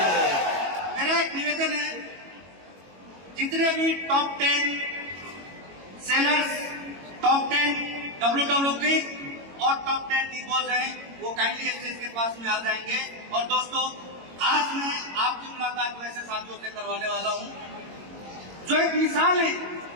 मेरा एक निवेदन है, जितने भी टॉप 10 सेलर्स, टॉप 10 WWK और टॉप 10 डिपोज हैं, वो काइंडली स्टेज के पास में आ जाएंगे। और दोस्तों, आज मैं आपकी मुलाकात वैसे साथियों से करवाने वाला हूं जो एक मिसाल है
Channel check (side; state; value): left; late; 22 ms